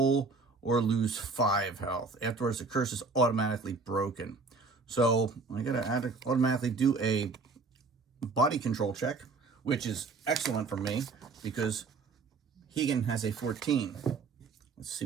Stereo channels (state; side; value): quieter; left; 4.3 dB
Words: or lose 5 health. Afterwards, the curse is automatically broken. So I gotta automatically do a body control check, which is excellent for me because Heigan has a 14. Let's see